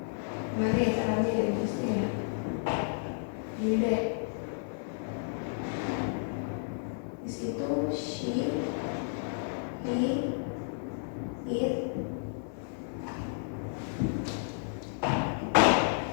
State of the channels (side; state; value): right; silent; digital silence